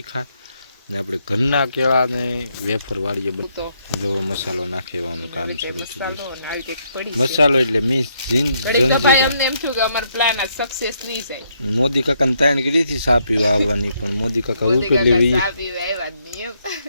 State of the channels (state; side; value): inverted; both; correlation -0.74